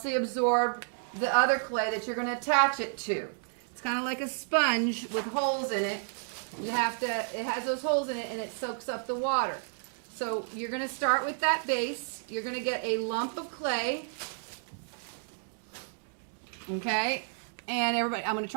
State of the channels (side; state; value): left; silent; digital silence